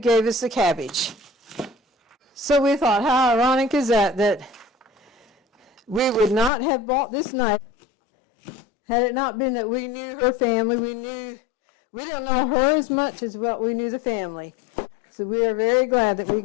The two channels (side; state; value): right; drops out; at 6.5 s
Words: us the cabbage. So we thought, how ironic is that we would not have bought this knife had it not been that we knew her family. We don't know her as much as what we knew the family. So we are very glad that we